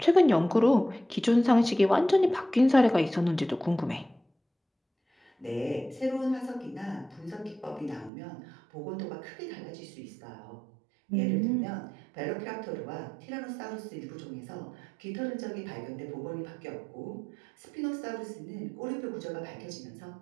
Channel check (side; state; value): left; drops out; at 8.1 s